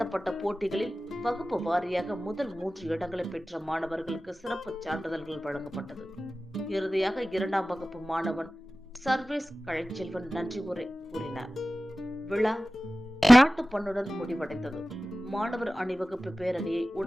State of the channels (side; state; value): both; normal; correlation 0.96